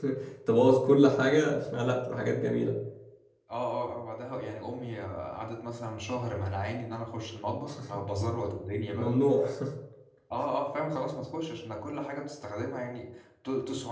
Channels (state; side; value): identical; both; correlation 1.00